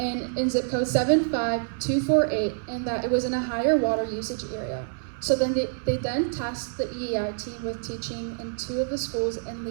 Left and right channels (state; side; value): silent; left; 60 dB below the other